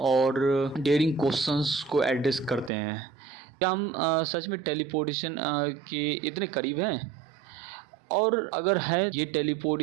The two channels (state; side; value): drops out; left; at 2.7 s